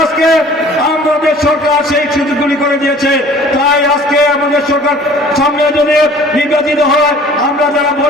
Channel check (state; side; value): normal; both; correlation 0.49